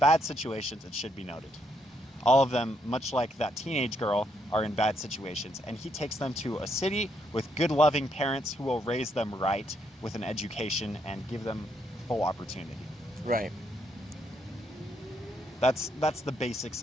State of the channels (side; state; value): both; normal; correlation 0.75